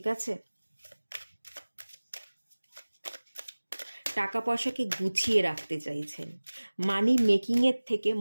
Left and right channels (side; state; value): both; inverted; correlation -1.00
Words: আছে? টাকা পয়সাকে গুছিয়ে রাখতে চাইছেন, মানি মেকিংয়ের থেকে